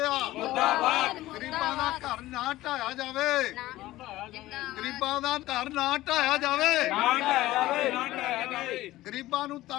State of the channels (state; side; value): quieter; right; 16.6 dB